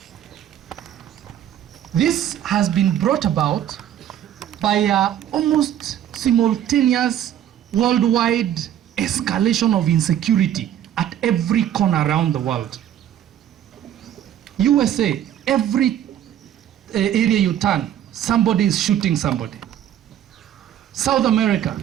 This has been brought about by almost simultaneous worldwide escalation of insecurity at every corner around the world. USA, every area you turn, somebody is shooting somebody. South America,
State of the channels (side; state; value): left; quieter; 10.9 dB